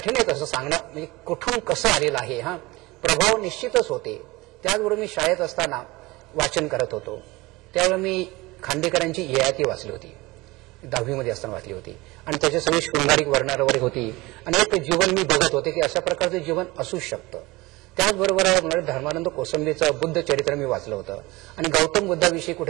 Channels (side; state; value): left; quieter; 21.7 dB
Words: आहे तसं सांगणं, म्हणजे कुठून कसं आलेलं आहे. हा प्रभाव निश्चितच होते. त्याचबरोबर मी शाळेत असताना वाचन करत होतो. त्यावेळी मी खांडेकरांची ययाती वाचली होती, 10वी असताना वाचली होती, आणि त्याच्या सगळी शृंगारिक वर्णनं वगैरे होती, आणि एक जीवन मी बघत होते की अशा प्रकारचं जीवन असू शकतं. त्याचबरोबर धर्मानंद कोसंबीचं बुद्ध चरित्र मी वाचलं होतं, आणि गौतम बुद्धाविषयी